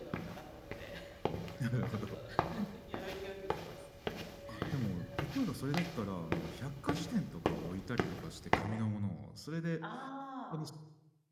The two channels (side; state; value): both; identical; correlation 1.00